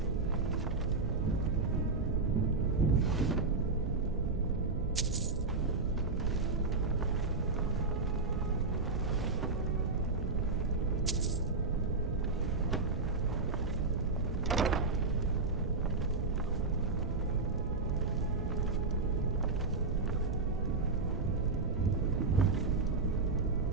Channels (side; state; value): left; quieter; 3.8 dB